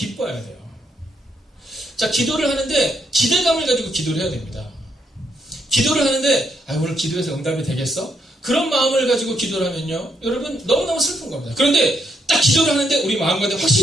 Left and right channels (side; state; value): both; normal; correlation 0.76